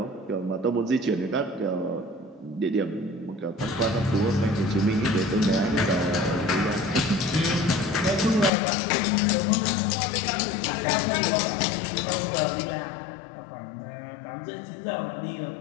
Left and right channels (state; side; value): drops out; right; at 8.5 s